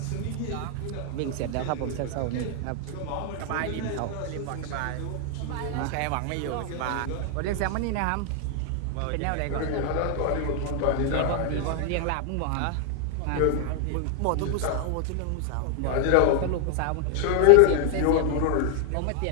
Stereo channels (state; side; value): different; both; correlation 0.00